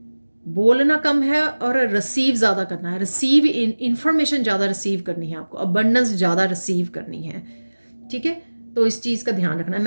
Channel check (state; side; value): inverted; both; correlation -1.00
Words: बोलना कम है और रिसीव ज़्यादा करना है। रिसीव इंफॉर्मेशन ज़्यादा रिसीव करनी है आपको, अबंडेंस ज़्यादा रिसीव करनी है, ठीक है। तो इस चीज़ का ध्यान रखना है।